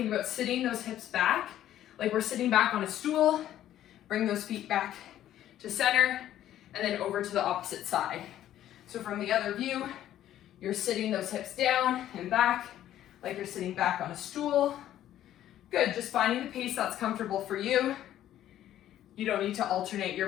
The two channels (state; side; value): quieter; right; 12.2 dB